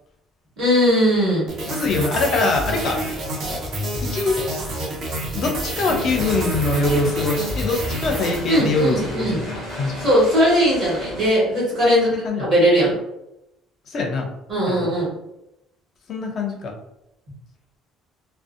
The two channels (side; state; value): both; normal; correlation 0.52